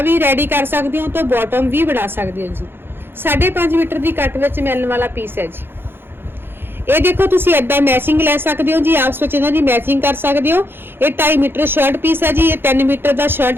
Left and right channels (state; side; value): late; left; 0.10 ms